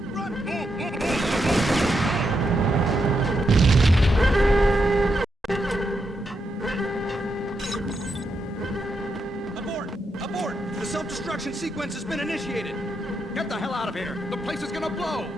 Run! Abort! The self-destruction sequence has been initiated! Get the hell out of here! The place is gonna blow!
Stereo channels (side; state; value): both; normal; correlation 0.82